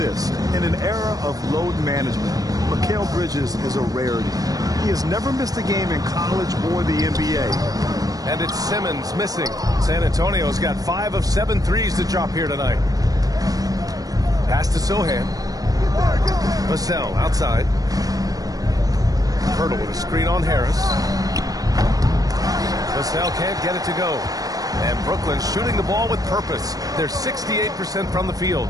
In an era of load management, Mikal Bridges is a rarity. He has never missed a game in college or the NBA. And it's Simmons missing. San Antonio's got 5 of 7 threes to drop here tonight. Pass to Sohan. Vassell outside. Pirtle with a screen on Harris. Vassell can't get it to go. And Brooklyn shooting the ball with purpose. They're 68% from the field.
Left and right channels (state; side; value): late; left; 0.18 ms